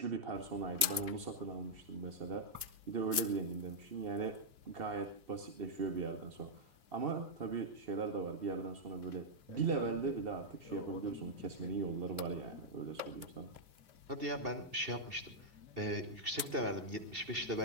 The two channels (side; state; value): left; late; 2.7 ms